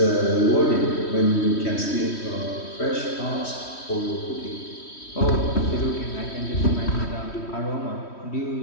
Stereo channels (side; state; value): right; late; 3.1 ms